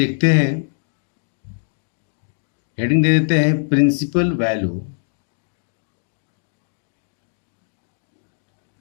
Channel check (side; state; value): right; silent; digital silence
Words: हैं। हेडिंग दे देते हैं प्रिंसिपल वैल्यू।